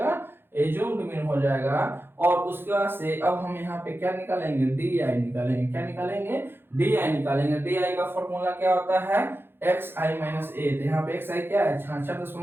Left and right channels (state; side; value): late; left; 0.10 ms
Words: एज्यूम्ड मीन हो जाएगा। और उसके बाद से अब हम यहाँ पे क्या निकालेंगे, डी आई निकालेंगे। क्या निकालेंगे, डी आई निकालेंगे। डी आई का फॉर्मूला क्या होता है, एक्स आई माइनस ए। तो यहाँ पे एक्स आई क्या है